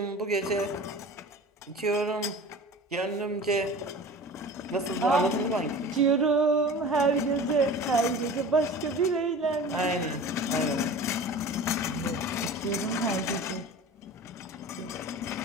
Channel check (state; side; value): normal; both; correlation 0.38